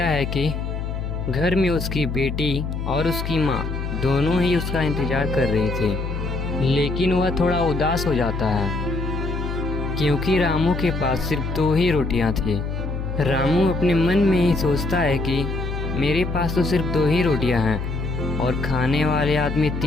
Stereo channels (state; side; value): noise; left; hum, 4 dB below the sound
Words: है कि घर में उसकी बेटी और उसकी माँ दोनों ही उसका इंतज़ार कर रही थी, लेकिन वह थोड़ा उदास हो जाता है क्योंकि रामू के पास सिर्फ 2 ही रोटियां थी। रामू अपने मन में ही सोचता है कि मेरे पास तो सिर्फ 2 ही रोटियां हैं और खाने वाले आदमी